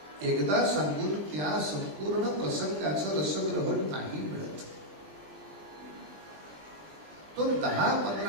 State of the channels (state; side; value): late; left; 20 ms